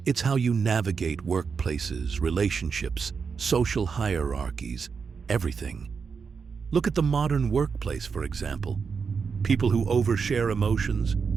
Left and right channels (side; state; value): left; quieter; 5.7 dB